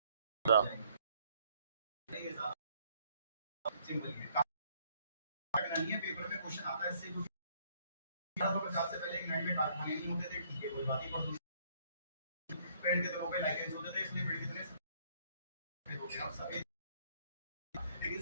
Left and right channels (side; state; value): both; inverted; correlation -0.66